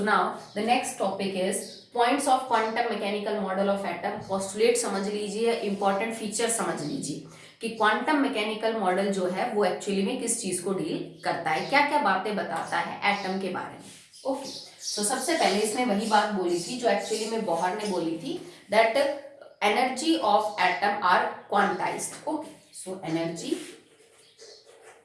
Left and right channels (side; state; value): both; identical; correlation 1.00